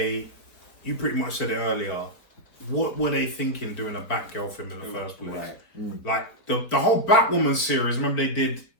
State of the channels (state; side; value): late; right; 4.4 ms